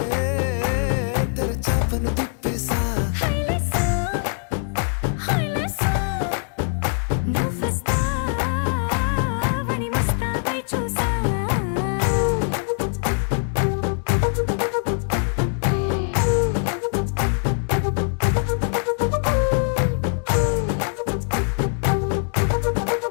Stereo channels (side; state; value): right; silent; 60 dB below the other